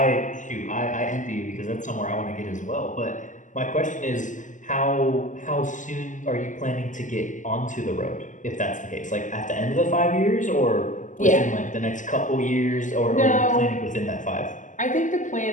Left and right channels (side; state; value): right; late; 0.37 ms